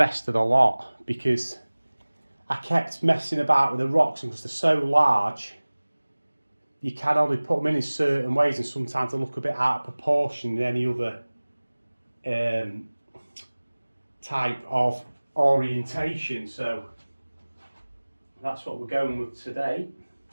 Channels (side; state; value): both; inverted; correlation -1.00